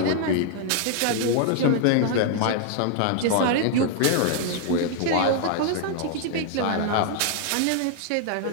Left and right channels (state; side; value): different; both; correlation 0.00